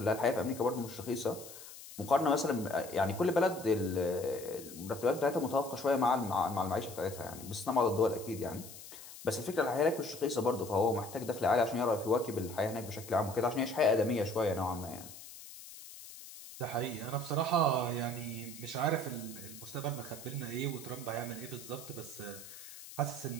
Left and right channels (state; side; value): noise; left; hiss, 15 dB below the sound